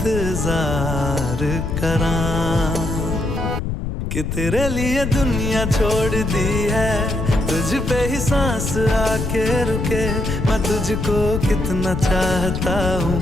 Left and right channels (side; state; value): left; noise; rumble, 3 dB below the sound